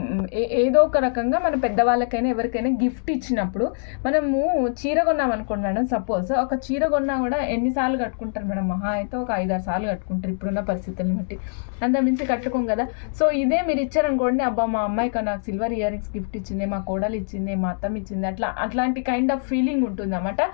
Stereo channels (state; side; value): silent; right; digital silence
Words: ఏదో ఒక రకంగా మన పెద్దవాళ్ళకైనా ఎవరికైనా గిఫ్ట్ ఇచ్చినప్పుడు మనము చీర కొన్నాం అనుకోండి మేడం. సపోజ్ ఒక చీర కొన్నా కూడా ఎన్నిసార్లు కట్టుకుంటారు మేడం? మహా అయితే ఒక 5-6 సార్లు కట్టుకుంటారు ఇప్పుడున్న పరిస్థితులను బట్టి, అంత మించి కట్టుకోం కదా. సో ఇదే మీరు ఇచ్చారనుకోండి, అబ్బా మా అమ్మాయికి నాకు సిల్వర్ ఇయర్ రింగ్స్ గిఫ్ట్ ఇచ్చింది, మా కోడలు ఇచ్చింది, మా అత్తమ్మ ఇచ్చింది, అట్లాంటి కైండ్ ఆఫ్ ఫీలింగ్ ఉంటుంది అన్నమాట.